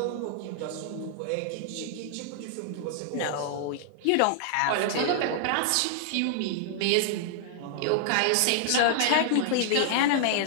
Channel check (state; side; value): different; both; correlation -0.01